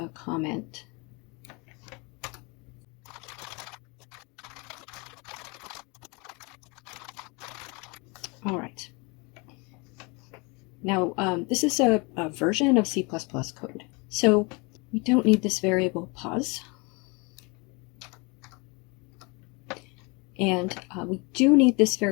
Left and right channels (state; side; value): quieter; right; 29.1 dB